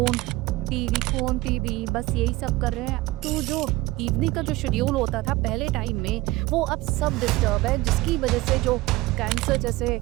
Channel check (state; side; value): quieter; left; 19.5 dB